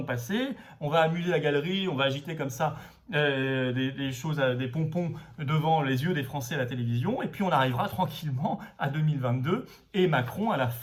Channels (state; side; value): identical; both; correlation 1.00